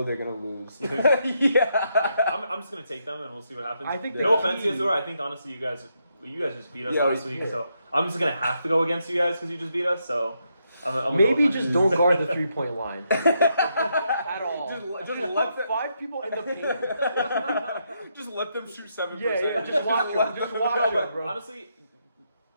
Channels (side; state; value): both; inverted; correlation -0.79